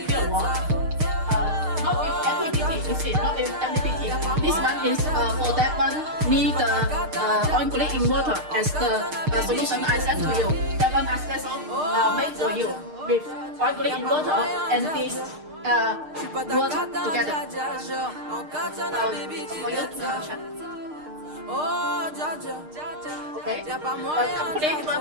kilowatt. Not with MPPT, you see, not with MPPT. This one is for that one need the on-grid inverter as the solution I sent to you. That one is special made for you with on-grid inverter and this work together. For you to check. Okay, complete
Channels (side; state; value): left; late; 6.5 ms